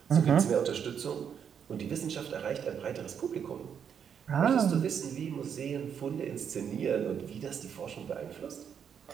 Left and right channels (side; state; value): left; quieter; 7.8 dB